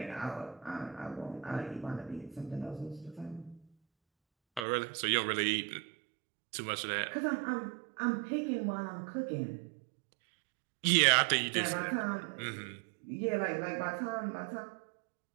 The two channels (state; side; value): drops out; left; at 4.7 s